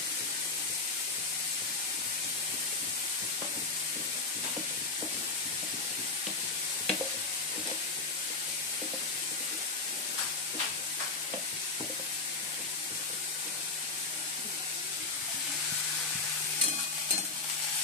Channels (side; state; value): right; quieter; 3.9 dB